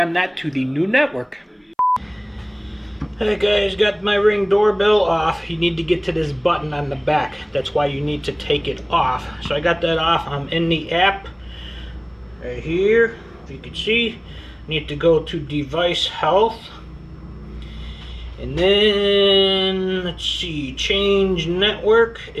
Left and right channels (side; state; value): both; identical; correlation 1.00